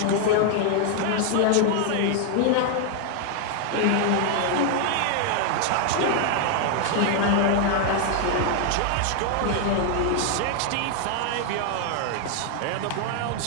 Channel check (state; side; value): different; both; correlation 0.00